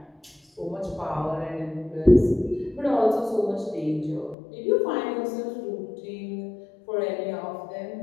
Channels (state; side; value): drops out; right; at 4.4 s